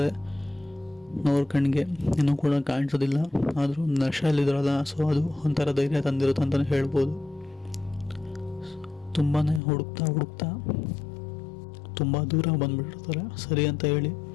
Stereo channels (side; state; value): right; drops out; at 9.6 s